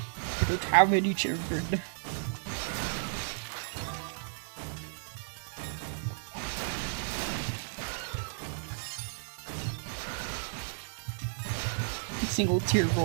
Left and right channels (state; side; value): silent; left; digital silence